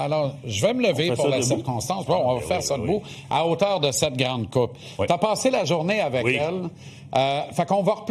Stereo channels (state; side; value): identical; both; correlation 1.00